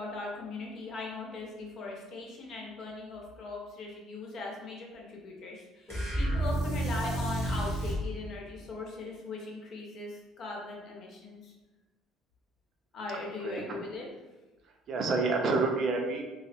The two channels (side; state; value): both; normal; correlation 0.65